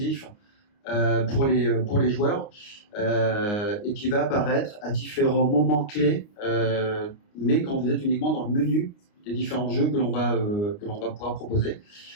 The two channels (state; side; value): late; right; 29 ms